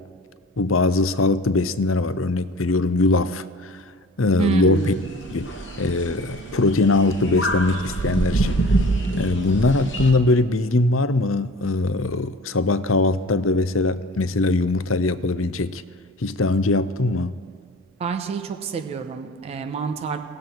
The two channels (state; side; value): normal; both; correlation 0.42